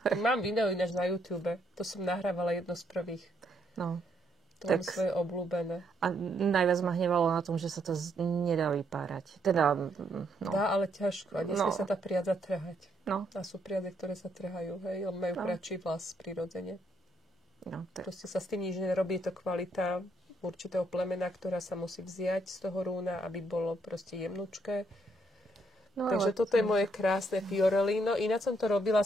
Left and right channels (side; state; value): both; normal; correlation 0.74